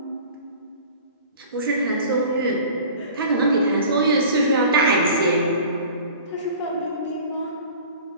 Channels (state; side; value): inverted; both; correlation -0.43